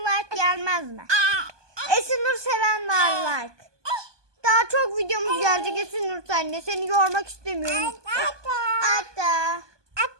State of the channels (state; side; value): late; left; 1.2 ms